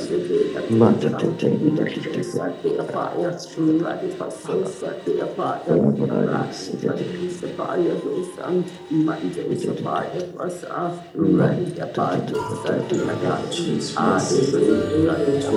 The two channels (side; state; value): both; identical; correlation 1.00